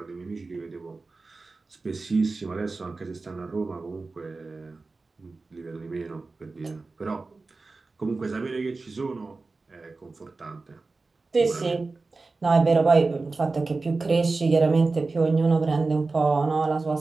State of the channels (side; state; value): left; quieter; 3.7 dB